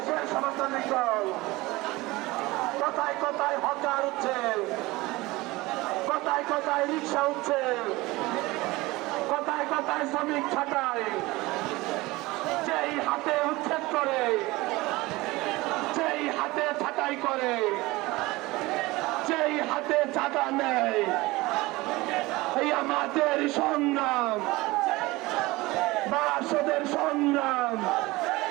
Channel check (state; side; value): quieter; left; 20.8 dB